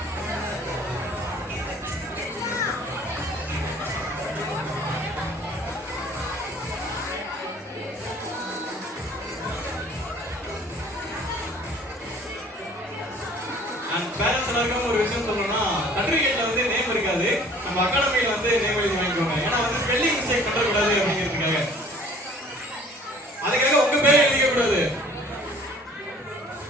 அண்ட் பேரண்ட்ஸ் எல்லாருக்கும் ஒரு விஷயம் சொல்லணும்னா சர்டிஃபிகேட்ல வந்து நேம் இருக்காது. நம்ம அகாடமியில வந்து நேம் எழுதி வாங்கிக்கோங்க. ஏன்னா வந்து ஸ்பெல்லிங் மிஸ்டேக் பண்ணக்கூடாது அப்படிங்கிறதுக்காக. அதுக்காக உங்க பேர் எழுதிக்க கூடாது.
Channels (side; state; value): both; normal; correlation 0.52